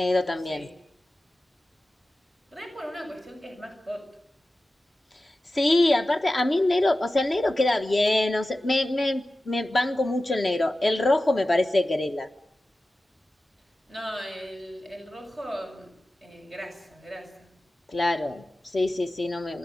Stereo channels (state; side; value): normal; both; correlation 0.95